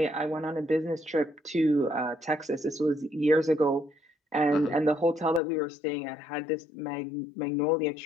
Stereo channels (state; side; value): drops out; right; at 5.4 s